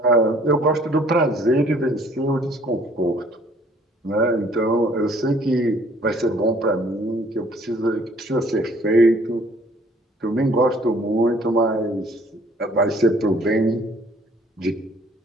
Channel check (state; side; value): normal; both; correlation 0.58